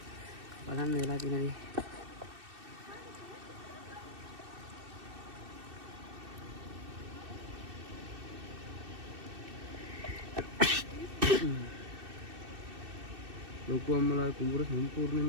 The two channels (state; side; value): late; left; 2.6 ms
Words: බලන්න වෙලා තියෙනදී ලොකු අම්මලා කුඹුර